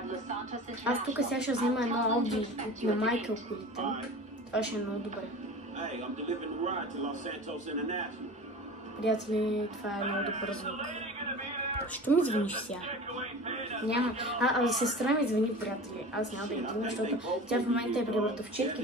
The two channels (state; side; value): normal; both; correlation 0.36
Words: Los Santos International. Аз тук сега ще взема едно Ауди на Майкъл колите. Това ще е много добре. Hey, I'm delivering the ride to Los Santos International. Приятели, това е много добър звук. Що ми звъниш сега? Няма. Сестра ми звъни, приятели. Аз няма да я вдигна, защото тя в момента е при